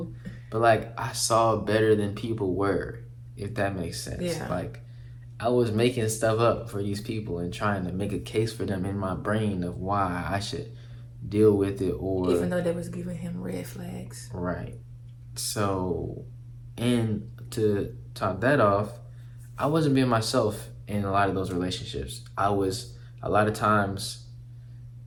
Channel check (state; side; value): identical; both; correlation 1.00